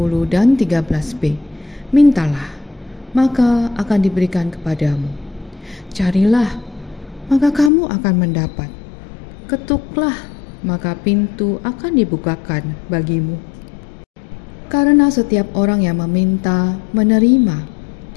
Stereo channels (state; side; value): drops out; right; at 7.7 s